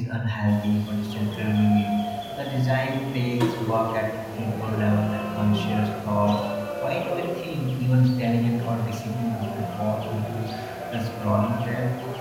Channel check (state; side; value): identical; both; correlation 1.00